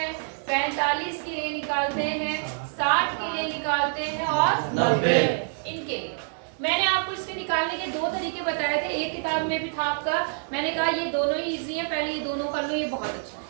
45 के लिए निकालते हैं, 60 के लिए निकालते हैं और 90 इनके लिए। मैंने आपको इसके निकालने के दो तरीके बताए थे, एक किताब में भी था आपका, मैंने कहा ये दोनों ही इजी है, पहले ये दोनों कर लो, ये बहुत अच्छा है।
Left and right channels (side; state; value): left; silent; 55 dB below the other